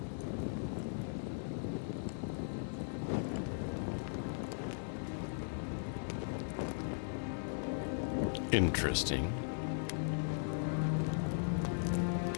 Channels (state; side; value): silent; right; 52 dB below the other